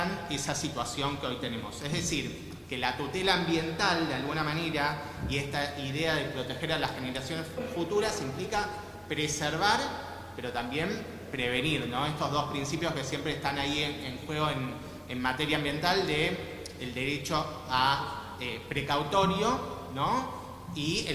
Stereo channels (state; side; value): identical; both; correlation 1.00